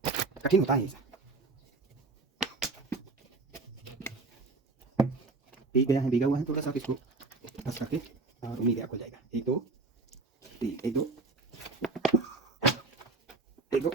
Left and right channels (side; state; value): left; quieter; 3.7 dB